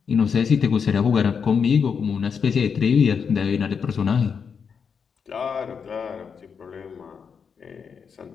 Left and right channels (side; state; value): right; quieter; 6.4 dB